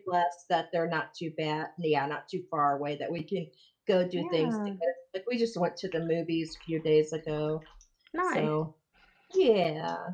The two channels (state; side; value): identical; both; correlation 1.00